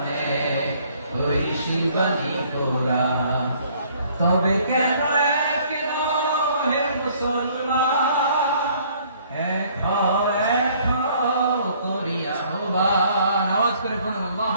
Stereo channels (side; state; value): both; inverted; correlation -0.60